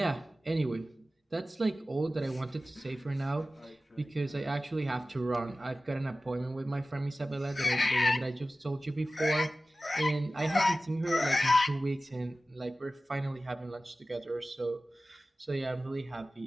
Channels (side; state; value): both; normal; correlation 0.96